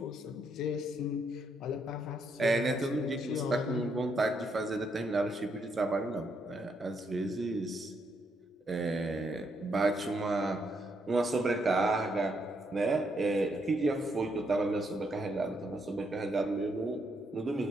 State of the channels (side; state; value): both; normal; correlation 0.76